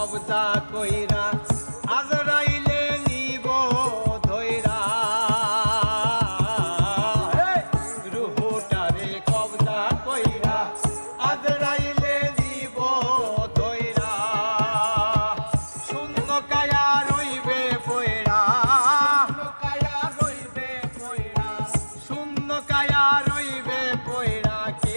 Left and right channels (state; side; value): inverted; both; correlation -1.00